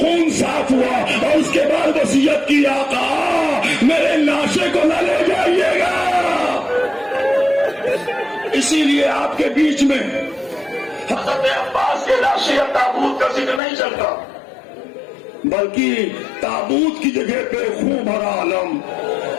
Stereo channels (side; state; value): right; drops out; at 13.6 s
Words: صاف ہوا اور اس کے بعد وصیت کی، آقا میرے لاشے کو نہ لے جائیے گا۔ اسی لیے آپ کے بیچ میں حضرت عباس کے لاشے تابوت کا ذکر نہیں چلتا، بلکہ تابوت کی جگہ پہ خون بھرا علم،